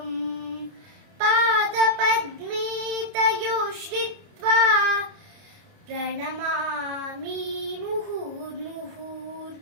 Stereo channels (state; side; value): late; left; 29 ms